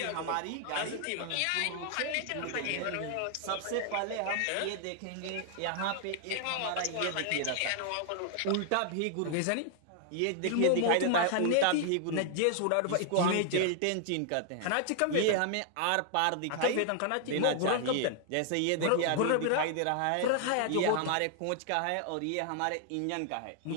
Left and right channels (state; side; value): different; both; correlation 0.00